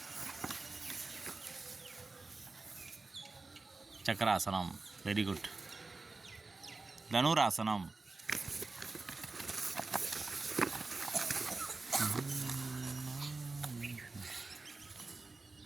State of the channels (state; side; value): quieter; left; 3.7 dB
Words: சக்கராசனம். Very good. தனுராசனம்.